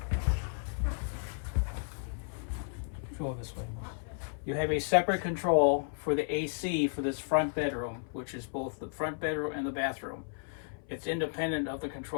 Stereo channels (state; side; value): silent; right; 56 dB below the other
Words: Go this way. You have a separate control for the AC for this front bedroom, which is both the front bedroom and the bathroom. It's independent of the